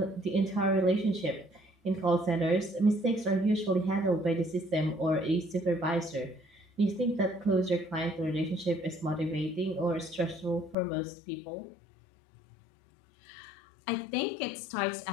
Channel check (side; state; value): right; drops out; at 10.8 s